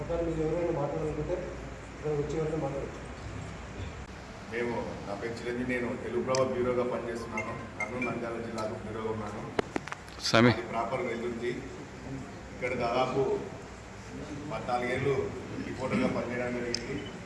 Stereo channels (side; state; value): both; identical; correlation 1.00